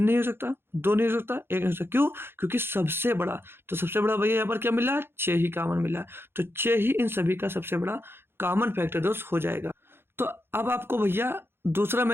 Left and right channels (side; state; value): left; late; 0.11 ms